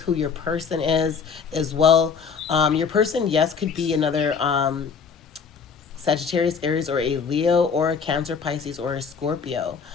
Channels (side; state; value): right; quieter; 5.9 dB